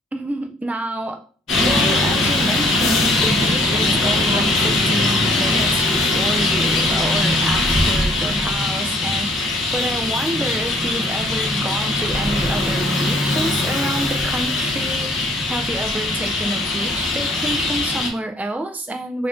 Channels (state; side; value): normal; both; correlation 0.60